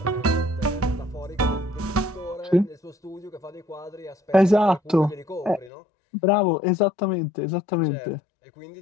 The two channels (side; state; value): right; drops out; at 5.7 s